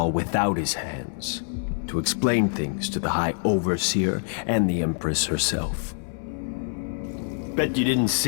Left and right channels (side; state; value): right; silent; 60 dB below the other